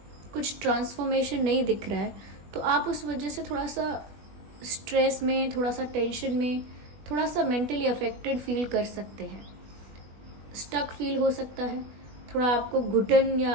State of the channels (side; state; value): left; late; 20 ms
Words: कुछ ट्रांसफॉर्मेशन नहीं दिख रहा है, तो आप उस वजह से थोड़ा सा स्ट्रेस में, थोड़ा सा टेंशन में, थोड़ा सा मेंटली अफेक्टेड फील कर सकते हैं, स्टक फील हो सकता है, थोड़ा आपको घुटन